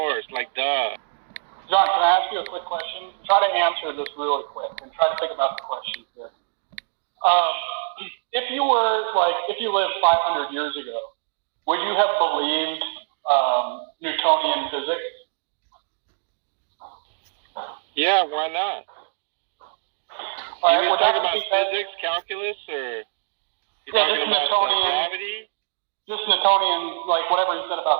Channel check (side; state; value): left; silent; digital silence